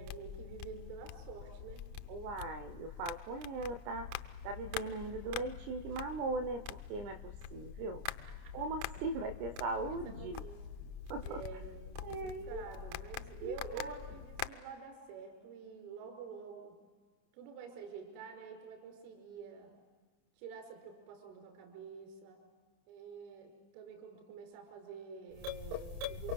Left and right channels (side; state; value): left; late; 30 ms